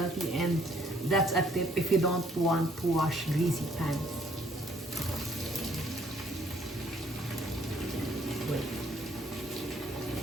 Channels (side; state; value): both; normal; correlation 0.64